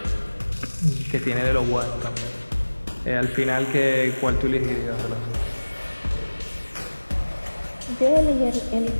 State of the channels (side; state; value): both; inverted; correlation -1.00